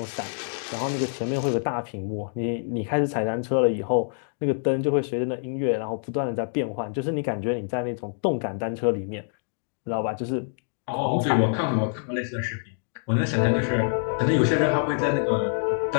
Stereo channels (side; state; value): right; silent; digital silence